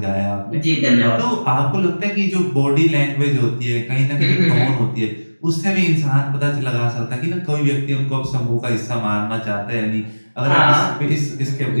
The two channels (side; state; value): both; inverted; correlation -1.00